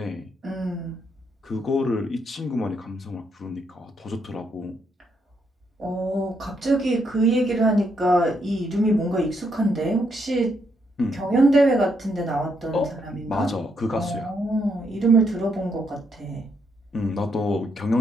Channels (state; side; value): normal; both; correlation 0.76